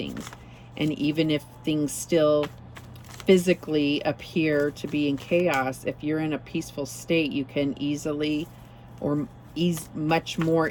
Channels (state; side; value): identical; both; correlation 1.00